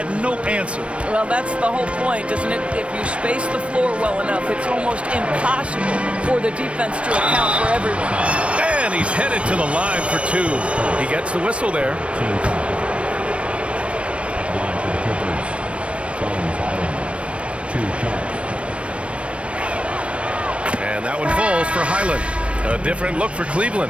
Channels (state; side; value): late; left; 0.061 ms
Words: no answer. Well, that's the whole point, isn't it? If you space the floor well enough, it's almost impossible for the defense to account for everyone. And he's headed to the line for 2. He gets the whistle there. Line for the Clippers. 2 shots. And that one falls for Highland. A different look for